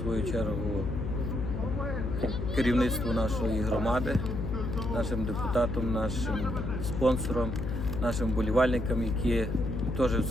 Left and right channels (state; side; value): noise; left; hum, 3 dB below the sound